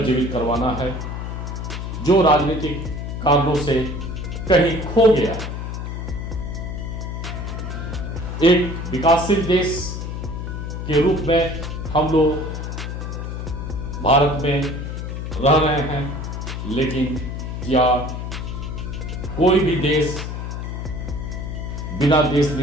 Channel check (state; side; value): noise; left; hum, 5 dB below the sound